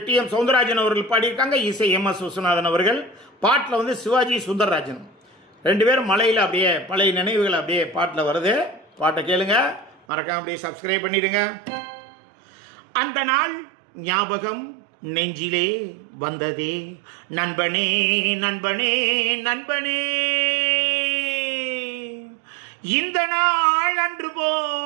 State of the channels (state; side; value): drops out; left; at 10.1 s